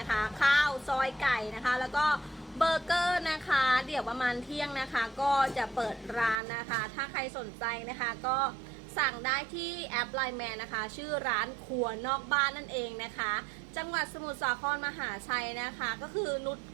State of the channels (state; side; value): drops out; left; at 6.4 s